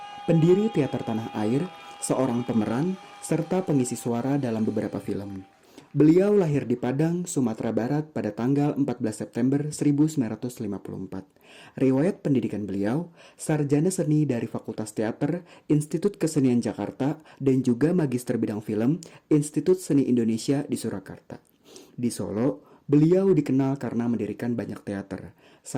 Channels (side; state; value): both; identical; correlation 1.00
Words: pendiri teater tanah air, seorang pemeran, serta pengisi suara dalam beberapa film. Beliau lahir di Padang, Sumatera Barat pada tanggal 14 September 1954. Riwayat pendidikan beliau, sarjana seni dari Fakultas Teater, Institut Kesenian Jakarta, dan juga magister bidang film, Institut Seni Indonesia di Surakarta. Di Solo, beliau dikenal karena mendirikan banyak teater.